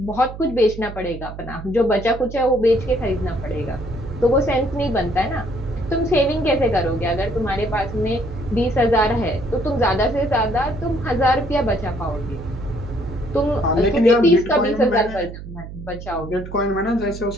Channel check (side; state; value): right; noise; hum, 12 dB below the sound